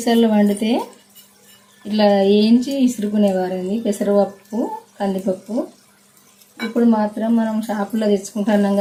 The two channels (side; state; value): both; identical; correlation 1.00